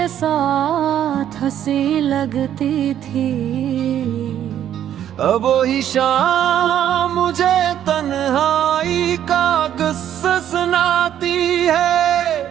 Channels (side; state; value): left; quieter; 10.6 dB